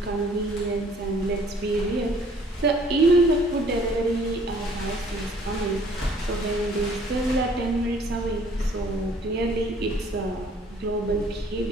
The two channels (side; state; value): both; normal; correlation 0.57